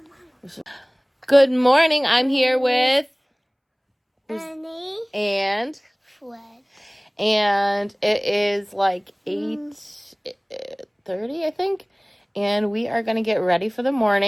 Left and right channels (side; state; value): both; identical; correlation 1.00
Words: Good morning. I'm here with Ernie. and Fred. it is like 8:30, I think, and we are gonna get ready for the